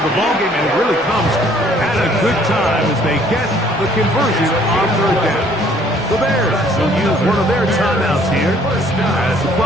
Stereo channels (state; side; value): normal; both; correlation 0.59